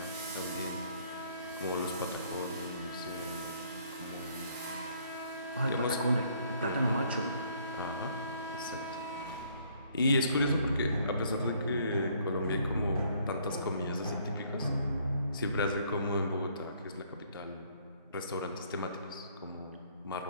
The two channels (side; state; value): both; inverted; correlation -0.64